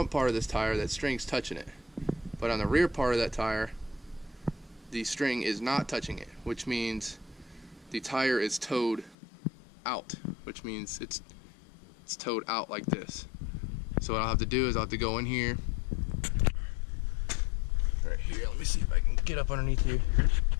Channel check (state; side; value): drops out; right; at 9.2 s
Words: part of this tire, that string's touching it, but on the rear part of that tire, the string is not touching it, which means the tire is towed out, which means it's towed out like this. So what I'll have to do is I'll have to go in here, right here, let me see if I can get up underneath here,